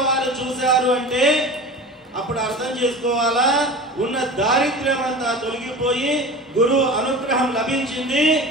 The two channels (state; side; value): normal; both; correlation 0.34